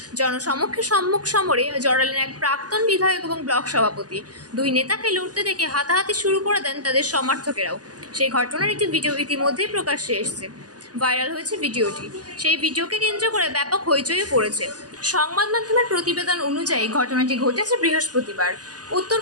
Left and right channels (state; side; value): late; left; 0.68 ms